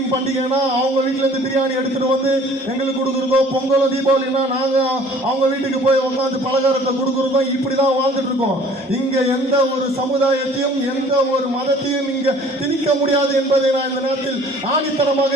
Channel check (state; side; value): normal; both; correlation 0.52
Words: பண்டிகைனா அவங்க வீட்டுல இருந்து பிரியாணி எடுத்துட்டு வந்து எங்களுக்கு கொடுக்குறதோ, பொங்கலோ தீபாவளினா நாங்க அவங்க வீட்டுக்கு போய் உட்காந்து பலகாரத்தை கொடுக்குறதோ, இப்படிதான் வாழ்ந்துட்டு இருக்கோம். இங்க எந்த ஒரு சமுதாயத்தையும் எந்த ஒரு மதத்தையும் இங்க திணிக்க முடியாது என்பதை நான் இந்த நேரத்தில்